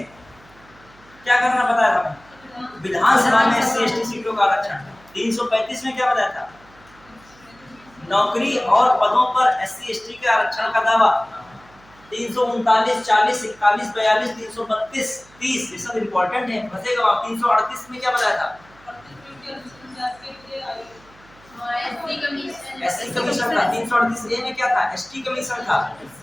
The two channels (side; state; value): right; noise; hum, 27 dB below the sound